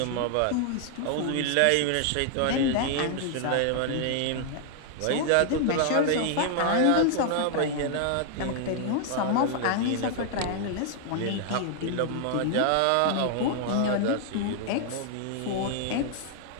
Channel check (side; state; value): both; different; correlation 0.00